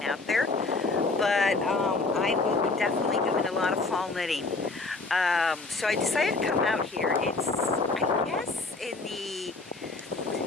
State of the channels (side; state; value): right; quieter; 3.6 dB